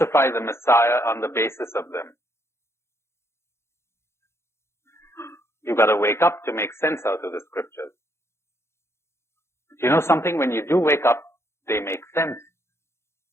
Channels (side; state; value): right; late; 0.13 ms